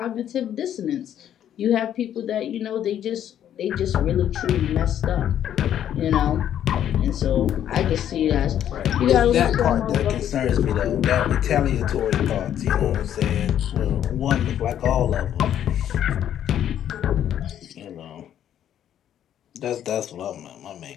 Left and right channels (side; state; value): right; quieter; 10.4 dB